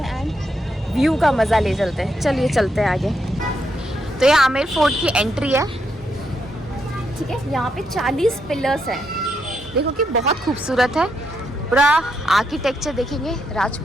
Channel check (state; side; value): normal; both; correlation 0.79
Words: हैं एंड व्यू का मज़ा ले चलते हैं। चलिए चलते हैं आगे। तो ये आमेर फोर्ट की एंट्री है, ठीक है। यहाँ पे 40 पिलर्स हैं, देखो कि बहुत खूबसूरत है। पूरा आर्किटेक्चर देखेंगे,